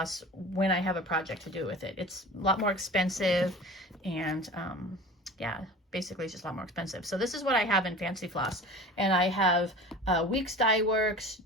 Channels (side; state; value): both; normal; correlation 0.38